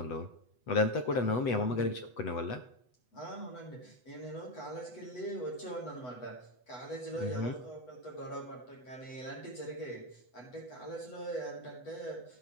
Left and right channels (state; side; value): late; right; 8.0 ms